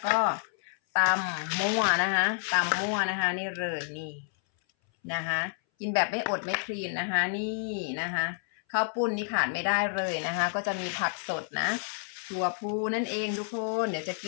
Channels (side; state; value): right; silent; 58 dB below the other